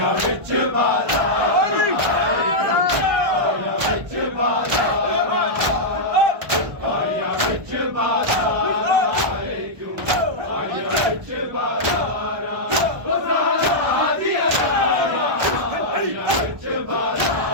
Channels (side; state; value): left; late; 1.2 ms